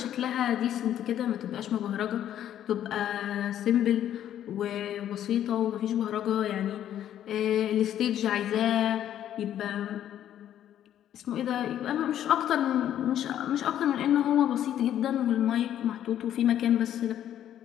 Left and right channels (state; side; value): quieter; right; 10.9 dB